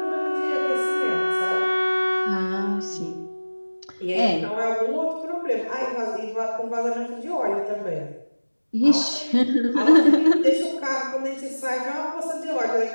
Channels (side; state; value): both; inverted; correlation -1.00